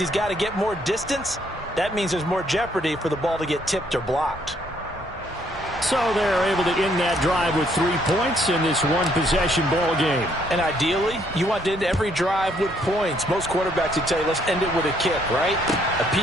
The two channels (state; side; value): normal; both; correlation 0.68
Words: got to get more distance. That means there's more jeopardy for the ball to get tipped or blocked. So they're able to end that drive with 3 points in this one-possession ball game. And ideally, you want to end every drive with points. Most quarterbacks would tell you, let's end it with a kick, right? A